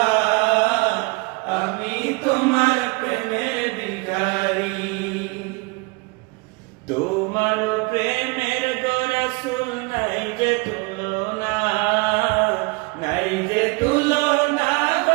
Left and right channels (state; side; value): quieter; left; 28.0 dB